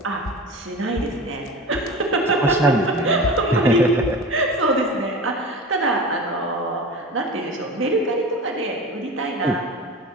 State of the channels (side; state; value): both; normal; correlation 0.32